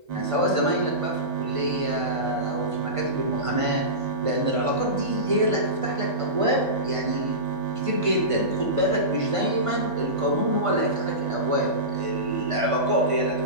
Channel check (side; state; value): left; late; 1.5 ms